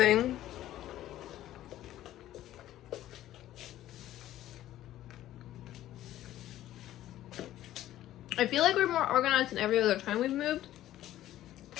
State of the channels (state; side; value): quieter; right; 13.6 dB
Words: I feel like we're more organized than every other time we've moved.